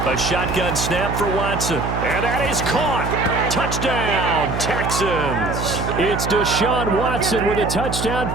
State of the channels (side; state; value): right; noise; hum, 4 dB below the sound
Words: A shotgun snap for Watson. And that is caught. Touchdown, Texans. It's Deshaun Watson with a touchdown